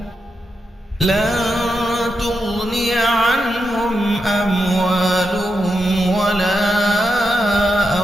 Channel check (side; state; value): both; normal; correlation 0.85